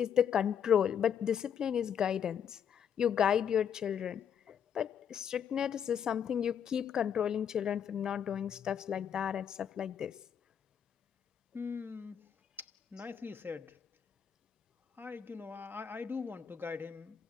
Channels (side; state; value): right; quieter; 8.2 dB